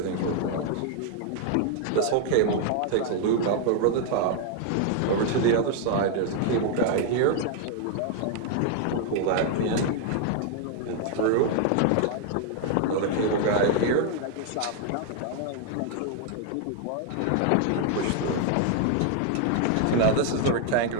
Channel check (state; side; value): different; both; correlation 0.00